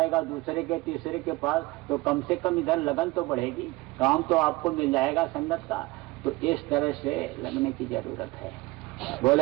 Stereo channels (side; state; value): left; quieter; 20.9 dB